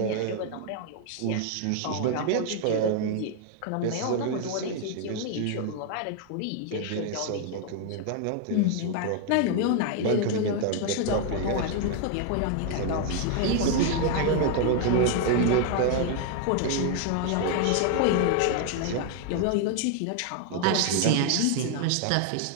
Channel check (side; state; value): both; different; correlation 0.00